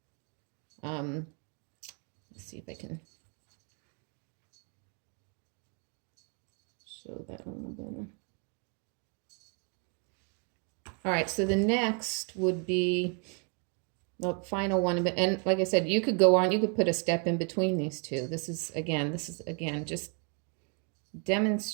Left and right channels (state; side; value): quieter; left; 38.1 dB